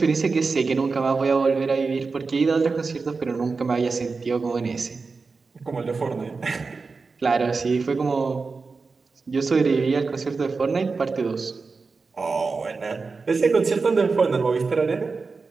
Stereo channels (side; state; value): left; quieter; 4.4 dB